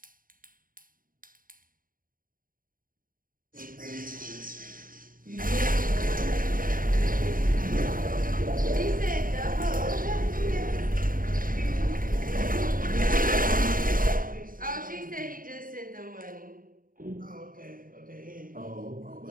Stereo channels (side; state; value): left; late; 0.41 ms